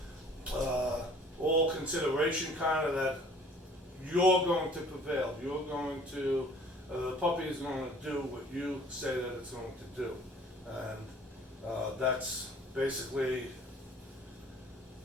all consideration kind of that you're going to prevail. You're going to the puppy is going to do what you say that it's going to do, and that's basically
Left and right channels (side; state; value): both; normal; correlation 0.52